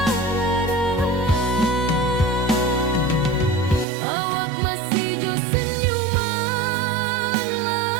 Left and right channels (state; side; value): drops out; left; at 3.9 s